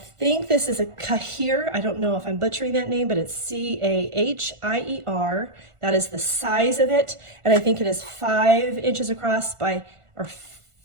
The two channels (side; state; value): left; late; 1.4 ms